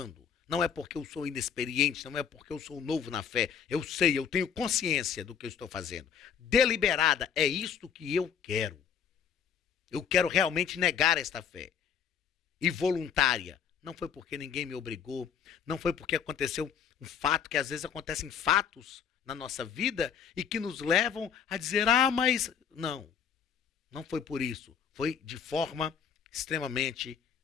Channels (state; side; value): quieter; right; 7.6 dB